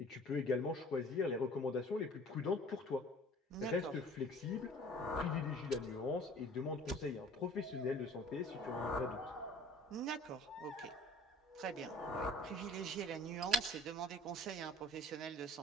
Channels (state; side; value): normal; both; correlation 0.47